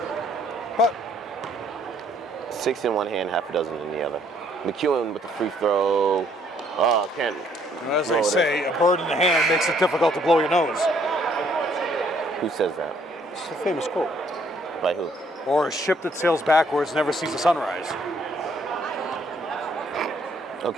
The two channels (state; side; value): normal; both; correlation 0.65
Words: But 6 in one hand, half a dozen in the other. McEwen with the free throw. Oh, can't. as they say, a bird in the hand makes it difficult to blow your nose. Who says that? It's a famous quote. By who? Or a ship that sails backwards never sees the sunrise.